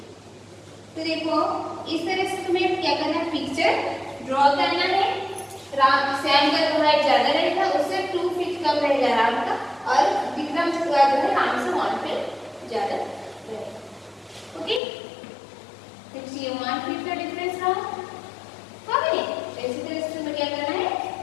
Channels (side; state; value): right; drops out; at 14.8 s